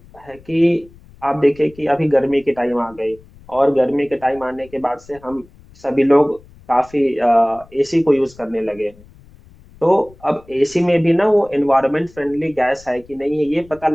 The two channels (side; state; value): left; noise; rumble, 25 dB below the sound